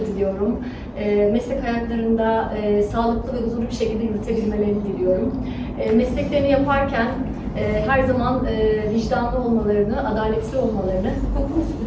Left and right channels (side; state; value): both; identical; correlation 1.00